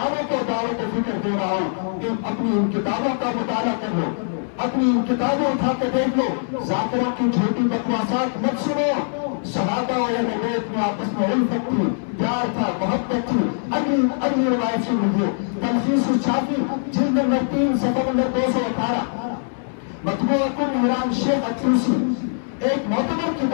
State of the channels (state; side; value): silent; right; 64 dB below the other